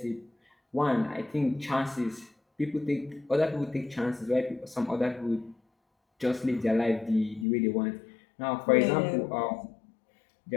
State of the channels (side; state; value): right; drops out; at 7.5 s